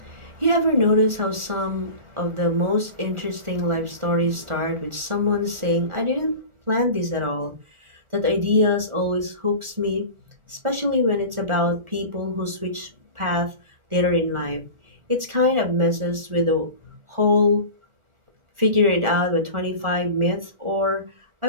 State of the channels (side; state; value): left; late; 1.4 ms